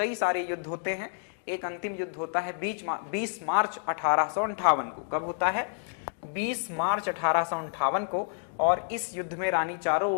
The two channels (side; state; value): right; silent; digital silence